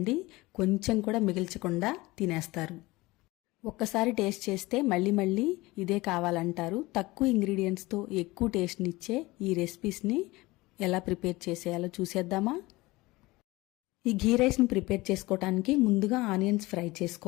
కొంచెం కూడా మిగిల్చకుండా తినేస్తారు. ఒక్కసారి టేస్ట్ చేస్తే మళ్ళీ మళ్ళీ ఇదే కావాలంటారు. తక్కువ ఇంగ్రీడియంట్స్తో ఎక్కువ టేస్ట్నిచ్చే ఈ రెసిపీస్ని ఎలా ప్రిపేర్ చేసేయాలో చూసేద్దామా? ఈ గీ రైస్ని ప్రిపేర్ చేసుకోవడానికి ముందుగా ఆనియన్స్ ఫ్రై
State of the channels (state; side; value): quieter; right; 20.9 dB